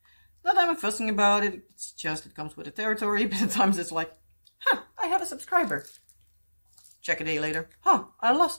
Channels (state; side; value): inverted; both; correlation -1.00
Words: Not that I'm fussing about it. It's just it comes with the territory. But at times it's like, huh, I have a subscriber. Check a day later. Huh, I